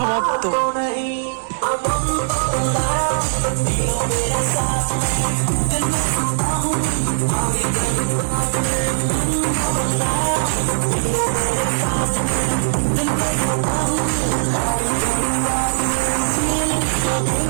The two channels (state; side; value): silent; left; digital silence